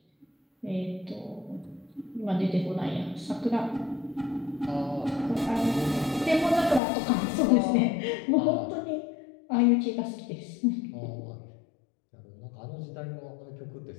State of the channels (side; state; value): right; drops out; at 6.8 s